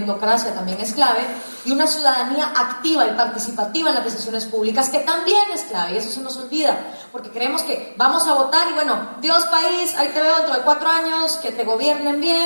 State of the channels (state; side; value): inverted; both; correlation -1.00